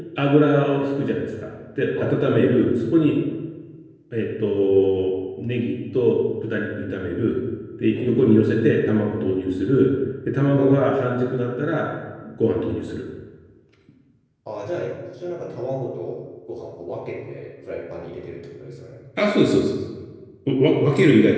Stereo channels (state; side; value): identical; both; correlation 1.00